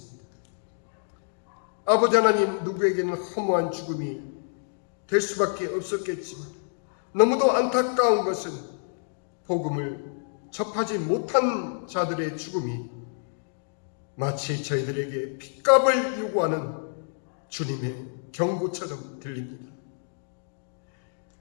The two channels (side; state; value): right; silent; digital silence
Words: 아버지 하나님, 누구에게는 허무한 죽음이 될 수밖에 없었겠지만 너무도 안타까운 것은 복음을 접하지 못한 자들의 죽음이 마치 저희들에게 핏값을 요구하는 주님의 경고처럼 들립니다.